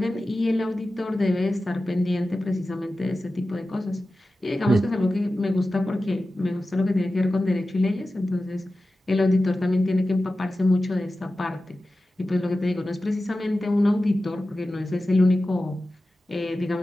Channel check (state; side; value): normal; both; correlation 0.94